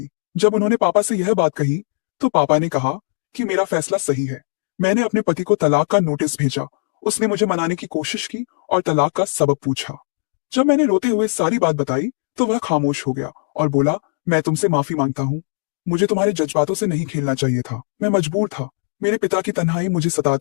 जब उन्होंने पापा से यह बात कही तो पापा ने कहा कि मेरा फैसला सही है। मैंने अपने पति को तलाक का नोटिस भेजा। उसने मुझे मनाने की कोशिश की और तलाक का सबब पूछा। जब मैंने रोते हुए सारी बात बताई तो वह खामोश हो गया और बोला, मैं तुमसे माफी मांगता हूँ। मुझे तुम्हारे जज्बातों से नहीं खेलना चाहिए था। मैं मजबूर था। मेरे पिता की तन्हाई मुझे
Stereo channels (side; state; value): right; silent; digital silence